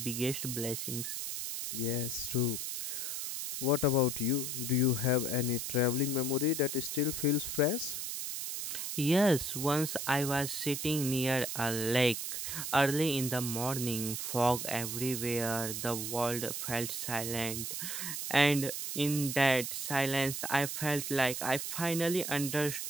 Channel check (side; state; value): right; noise; hiss, 4 dB below the sound